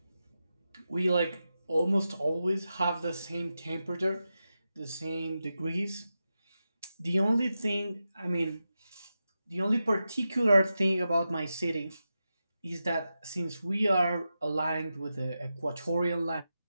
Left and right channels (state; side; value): inverted; both; correlation -0.90